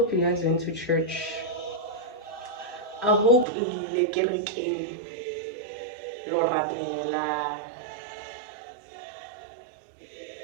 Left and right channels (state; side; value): drops out; left; at 3.5 s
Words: you guys went to church. I hope lile kerekeng lo rapela